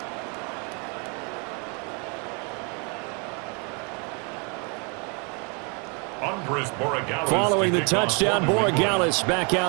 Following the touchdown, Borregales back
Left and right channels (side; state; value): left; quieter; 34.5 dB